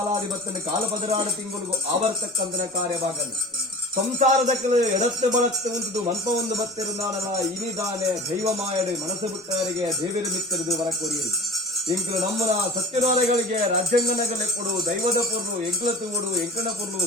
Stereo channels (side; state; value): both; normal; correlation 0.39